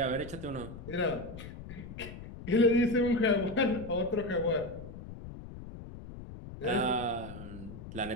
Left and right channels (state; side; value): noise; left; rumble, 12 dB below the sound